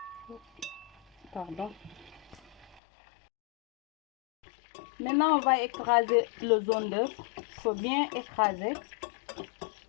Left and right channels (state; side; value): drops out; right; at 2.8 s